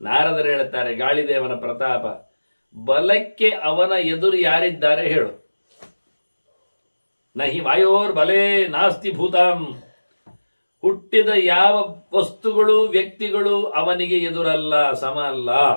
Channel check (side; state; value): both; inverted; correlation -1.00